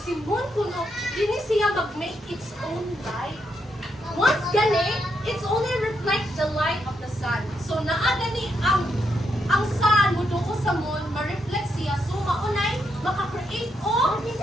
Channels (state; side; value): normal; both; correlation 0.80